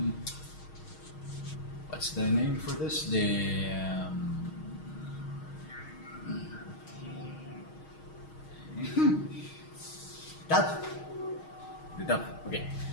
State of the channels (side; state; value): right; late; 6.4 ms